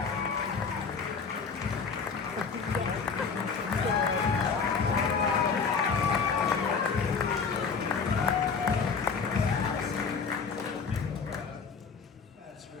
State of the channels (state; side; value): quieter; right; 5.4 dB